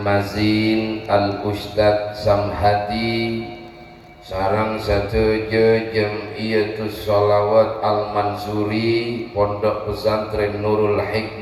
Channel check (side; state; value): both; identical; correlation 1.00